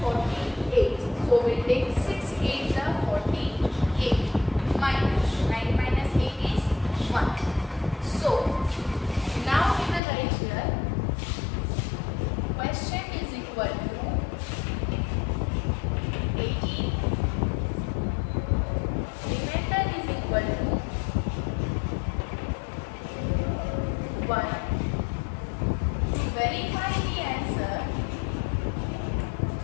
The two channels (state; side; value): drops out; right; at 10.0 s